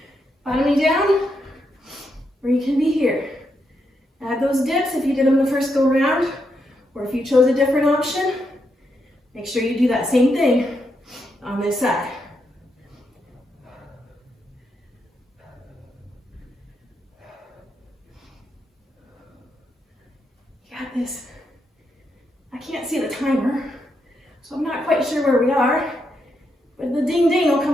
Bottoming down, or you can be here. Add those dips if you did them the first go round, or if you chose a different option, make sure you do that same thing on this side. You got this. I can't see the timer, so I'm not quite sure where we are, but the ding ding will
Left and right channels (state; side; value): normal; both; correlation 0.81